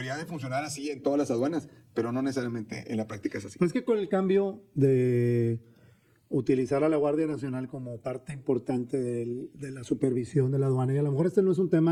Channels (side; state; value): both; identical; correlation 1.00